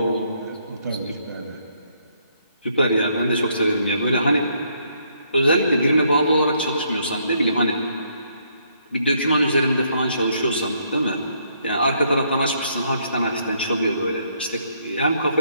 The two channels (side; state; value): both; inverted; correlation -0.71